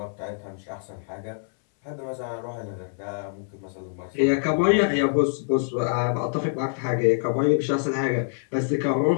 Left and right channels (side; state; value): right; silent; 60 dB below the other